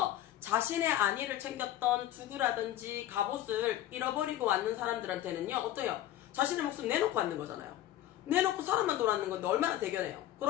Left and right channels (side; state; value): right; quieter; 13.0 dB